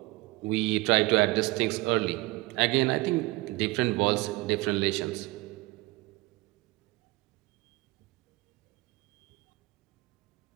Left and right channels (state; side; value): quieter; left; 21.5 dB